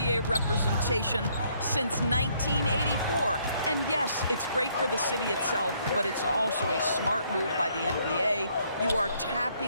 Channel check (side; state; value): both; inverted; correlation -0.68